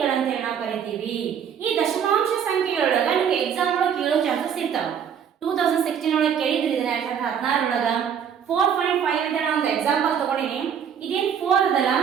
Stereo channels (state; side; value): quieter; left; 8.0 dB